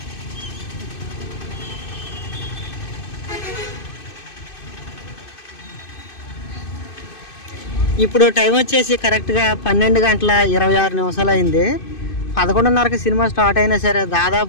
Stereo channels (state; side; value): late; right; 2.5 ms